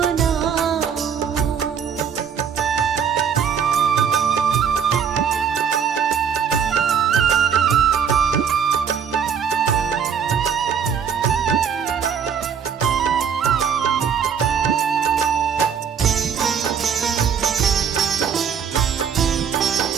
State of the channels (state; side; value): quieter; left; 7.2 dB